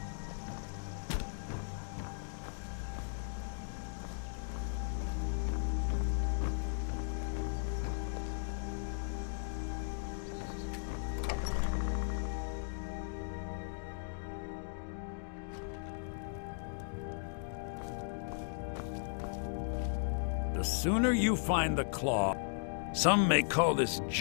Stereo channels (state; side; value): silent; right; digital silence